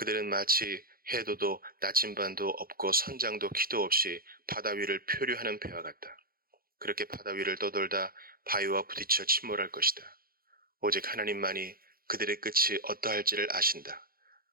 마치 해도도 나침반도 없고 선장도 키도 없이 바다 위를 표류하는 배와 같다. 그렇게 바다 위를 떠돌다 바위와 부딪혀 침몰할 것이다. 오직 하나님만이 그들의 끝이 어떠할지를 아신다.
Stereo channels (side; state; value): left; late; 0.43 ms